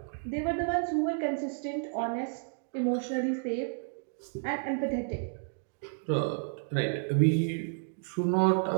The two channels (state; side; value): silent; left; digital silence